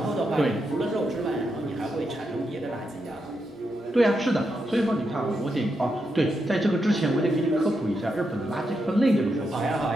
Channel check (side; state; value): both; normal; correlation 0.84